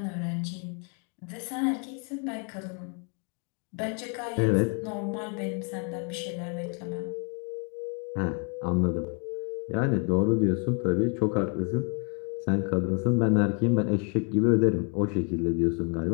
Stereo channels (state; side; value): quieter; right; 38.4 dB